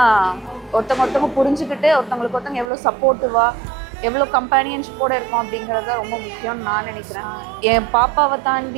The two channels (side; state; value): left; drops out; at 2.7 s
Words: ஒருத்தவங்க புரிஞ்சுக்கிட்டு ஒருத்தவங்களுக்கு ஒருத்தவங்க எவ்வளோ சப்போர்ட்டிவாக, எவ்வளோ கம்பேனியன்ஷிப்போடு இருக்கும் அப்படிங்கிறத ரொம்ப முக்கியம்னு நான் நினைக்கிறேன். என் பாப்பாவை